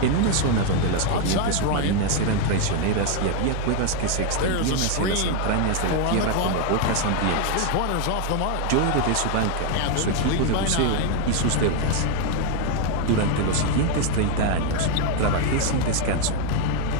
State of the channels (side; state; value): both; different; correlation 0.01